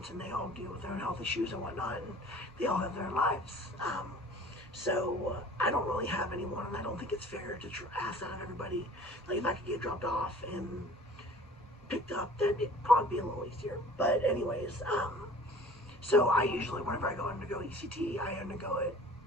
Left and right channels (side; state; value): both; normal; correlation 0.47